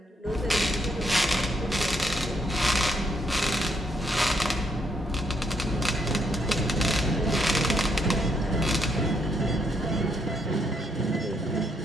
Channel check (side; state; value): both; normal; correlation 0.74